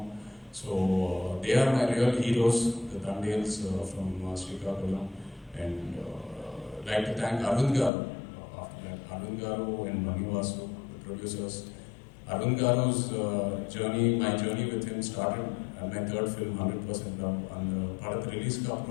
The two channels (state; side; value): drops out; right; at 7.9 s